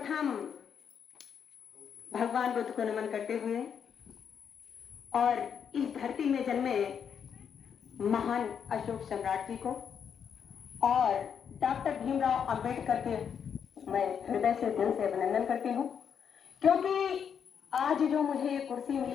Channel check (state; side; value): quieter; right; 7.5 dB